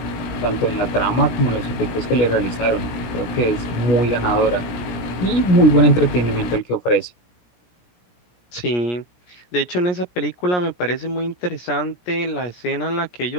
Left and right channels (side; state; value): right; late; 17 ms